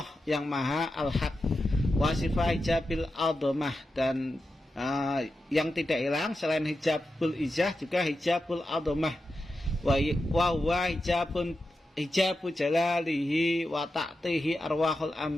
yang maha al-haq, wa sifat hijabil a'dzamah, dan yang tidak hilang selain hijabul ijah juga hijabul a'dzamah, wa huwa hijabu jalalihi wa ta'tihi arwahul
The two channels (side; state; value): both; normal; correlation 0.90